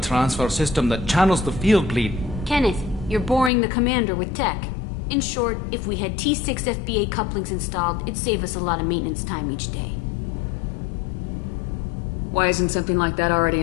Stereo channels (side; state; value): right; drops out; at 3.5 s